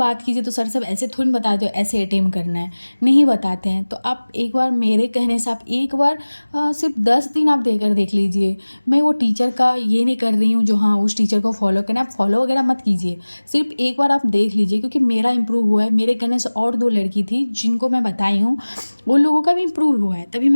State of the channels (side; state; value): both; inverted; correlation -1.00